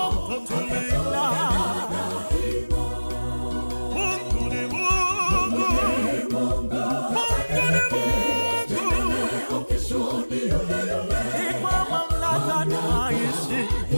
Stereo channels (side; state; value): both; inverted; correlation -1.00